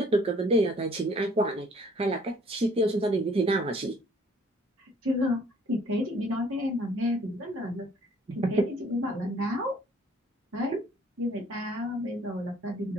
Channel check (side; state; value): both; normal; correlation 0.58